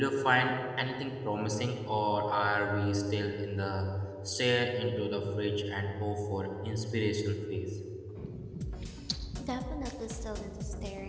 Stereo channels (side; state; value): both; identical; correlation 1.00